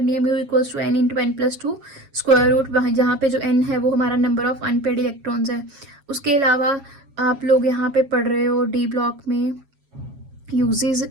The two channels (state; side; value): late; left; 7.4 ms